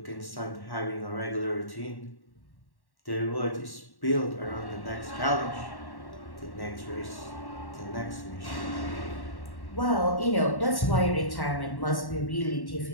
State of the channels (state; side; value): late; right; 1.1 ms